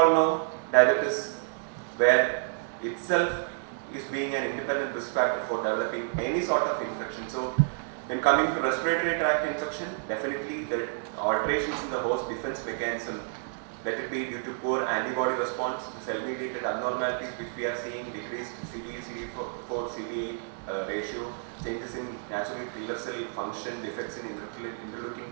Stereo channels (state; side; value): silent; left; digital silence